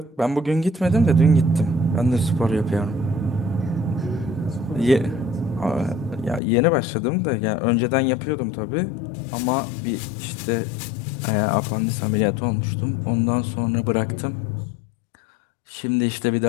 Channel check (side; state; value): right; drops out; at 6.4 s